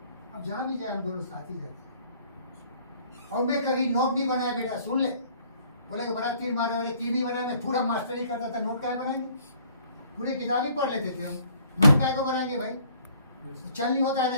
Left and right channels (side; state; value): both; inverted; correlation -0.58